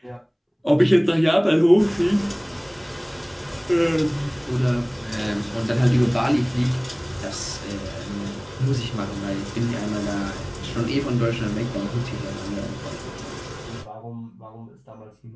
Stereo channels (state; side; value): identical; both; correlation 1.00